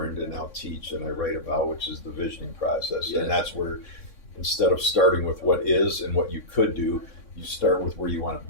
and now teach and I write about, which is the visioning process. Yes. And that's where, instead of starting with what is and what you could do, you start with where you want to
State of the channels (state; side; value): late; right; 3.6 ms